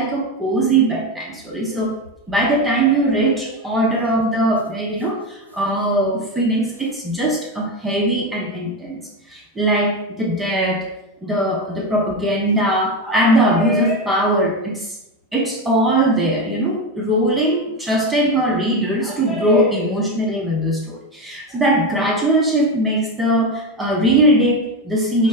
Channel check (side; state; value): both; normal; correlation 0.15